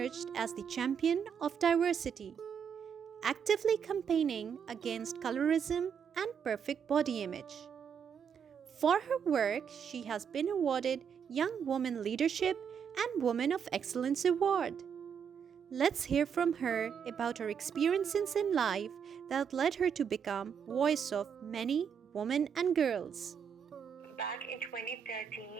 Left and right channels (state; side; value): quieter; left; 7.4 dB